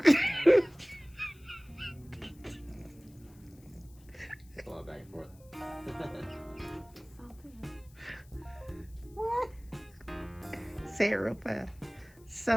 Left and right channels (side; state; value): left; noise; hiss, 28 dB below the sound